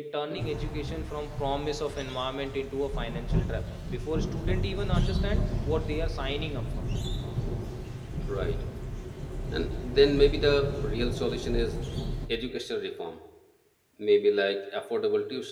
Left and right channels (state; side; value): identical; both; correlation 1.00